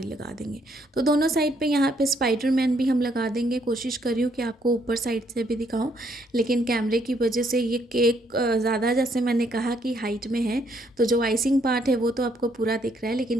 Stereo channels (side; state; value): both; normal; correlation 0.70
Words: लगा देंगे। तो दोनों साइड पे यहाँ पे स्पाइडरमैन भी हम लगा देंगे। कोशिश कर रही हूँ कि आपको ऊपर साइड से भी दिखाऊं, लेकिन कैमरे की वजह से ये केक ज़्यादा, जैसे मैंने कहा कि हाइट में है, तो जो आइसिंग पार्ट है वो तो आपको पूरा दिख रहा है,